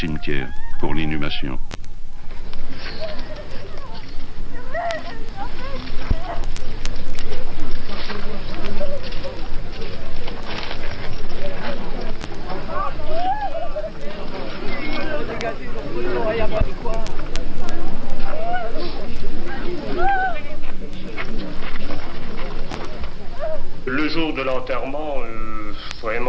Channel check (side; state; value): both; identical; correlation 1.00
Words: pour l'inhumation. Le jour de l'enterrement,